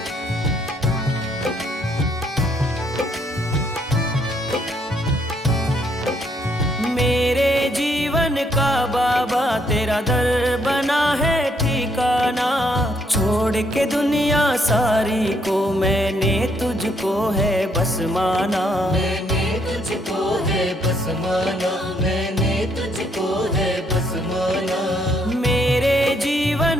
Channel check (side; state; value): both; normal; correlation 0.71